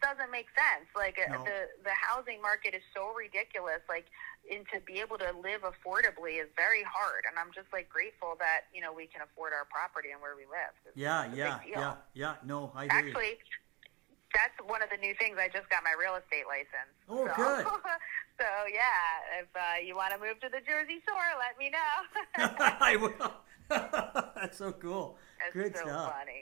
doesn't make sense. Like No. the housing market is so ridiculous. Like, and to be able to live affordably is very hard. And I'm just like grateful that, you know, we can afford our property and where we live. It's a big deal. No, I agree. Actually, that's one of the new things. I just got my real estate license. Oh, so, good. So, yeah, if you want to move to the Jersey Shore, let me know. I will. That's so cool. That's Good so stuff.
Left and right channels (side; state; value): left; quieter; 24.9 dB